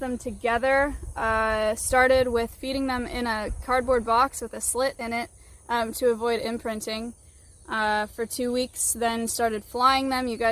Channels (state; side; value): identical; both; correlation 1.00